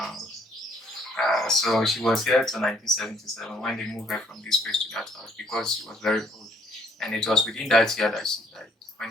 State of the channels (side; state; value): both; normal; correlation 0.65